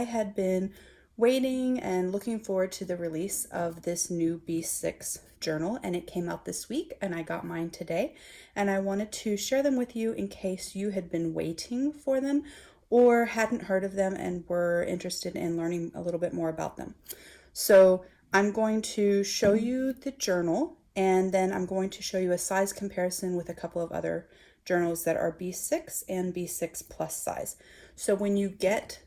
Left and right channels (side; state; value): both; identical; correlation 1.00